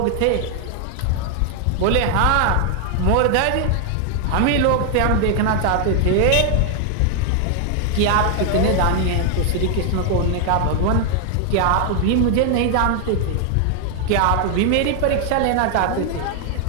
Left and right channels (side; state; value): both; different; correlation 0.00